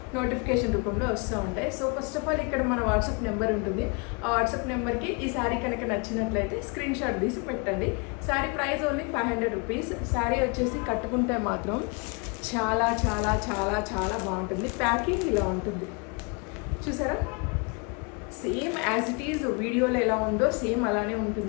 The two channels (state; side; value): quieter; right; 32.6 dB